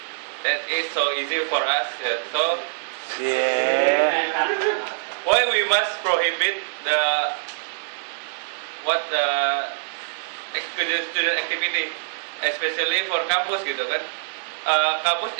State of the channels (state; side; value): silent; left; digital silence